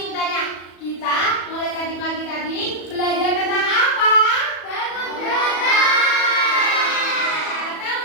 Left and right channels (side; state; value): right; late; 37 ms